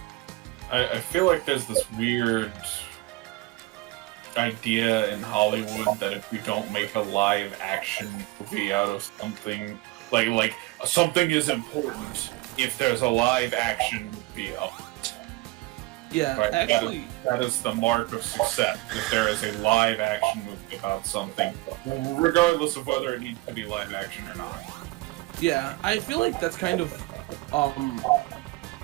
I feel like there's this weird idea in Hollywood that if you don't make a live action movie out of something, like something is important if there's a live action movie of it. Yeah, Right? actually, That is the mark of success, if there is a live action movie about something, regardless of whether it needs to be live action or not. yeah, I feel like that's kind of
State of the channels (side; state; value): left; quieter; 21.0 dB